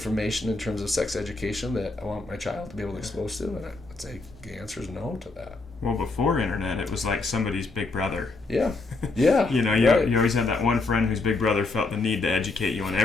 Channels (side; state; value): right; quieter; 3.5 dB